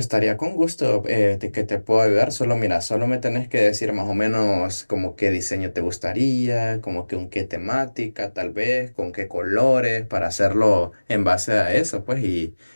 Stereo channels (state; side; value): inverted; both; correlation -1.00